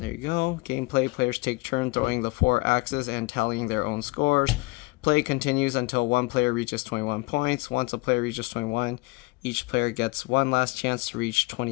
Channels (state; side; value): quieter; right; 25.2 dB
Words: you go. Gameplay, players take turn throwing the 4 axes and tallying their own scores. Play continues until one player reaches 21 points. Once a player reaches 21, each player gets one last chance to reach